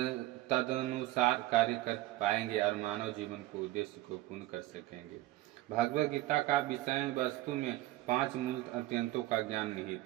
तदनुसार कार्य कर पाएंगे और मानव जीवन को उद्देश्य को पूर्ण कर सकेंगे। भगवत गीता का विषय वस्तु में 5 मूल अत्यंतों का ज्ञान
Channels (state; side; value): quieter; left; 16.8 dB